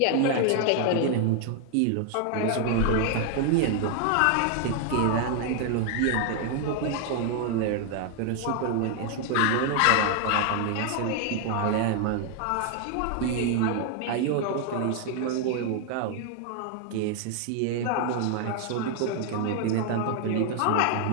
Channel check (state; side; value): different; both; correlation 0.00